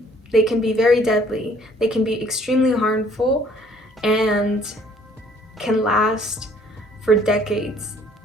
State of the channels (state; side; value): normal; both; correlation 0.59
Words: They can be very deadly. They can be extremely harmful and can last for decades